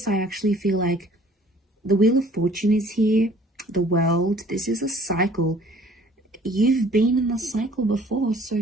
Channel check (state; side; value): normal; both; correlation 0.54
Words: I actually feel like the Wheel of Fortune is here. The World. This is a cycle. You've been in the cycle before.